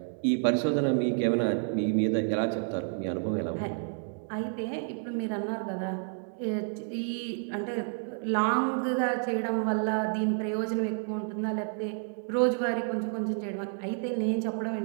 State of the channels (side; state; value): left; silent; 58 dB below the other